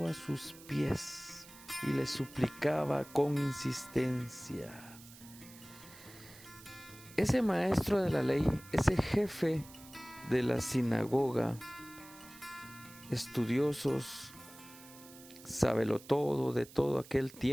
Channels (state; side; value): noise; right; hiss, 19 dB below the sound